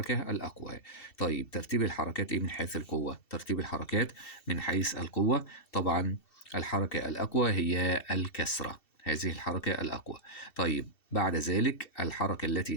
الأقوى. طيب ترتيب الحركات إيه من حيث القوة؟ ترتيب الحركات من حيث القوة طبعا الحركة الأقوى هي الكسرة، هذه الحركة الأقوى. طيب بعد ذلك الحركة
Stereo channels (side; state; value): right; late; 2.7 ms